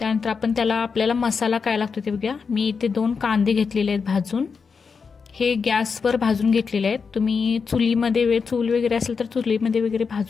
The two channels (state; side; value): quieter; right; 5.5 dB